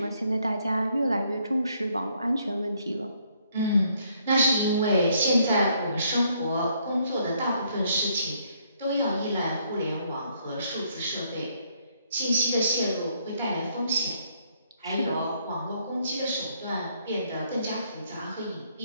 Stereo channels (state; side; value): inverted; both; correlation -0.69